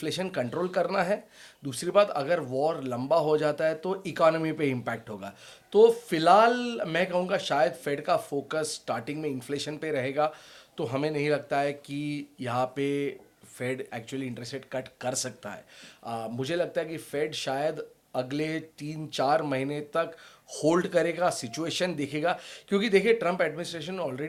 कंट्रोल करना है, दूसरी बात अगर वॉर लंबा हो जाता है तो इकोनॉमी पे इम्पैक्ट होगा। तो फिलहाल मैं कहूँगा शायद फेड का फोकस स्टार्टिंग में इन्फ्लेशन पे रहेगा। तो हमें नहीं लगता है कि यहाँ पे Fed actually interest rate cut कर सकता है। मुझे लगता है कि फेड शायद अगले 3-4 महीने तक होल्ड करेगा, सिचुएशन देखेगा। क्योंकि देखिए, ट्रंप एडमिनिस्ट्रेशन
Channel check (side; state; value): both; identical; correlation 1.00